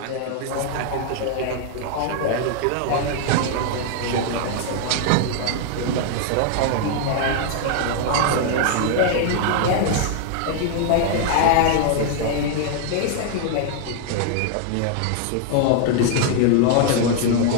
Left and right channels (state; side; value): different; both; correlation 0.00